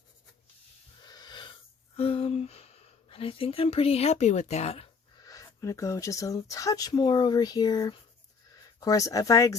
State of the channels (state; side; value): quieter; right; 5.2 dB